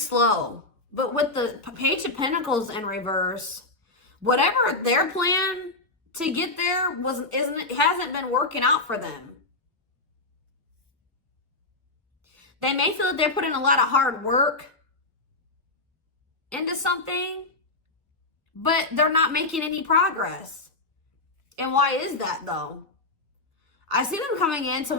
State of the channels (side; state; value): right; quieter; 3.1 dB